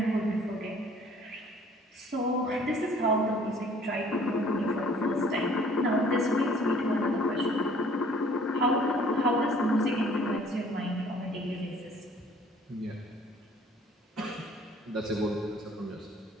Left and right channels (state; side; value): normal; both; correlation 0.55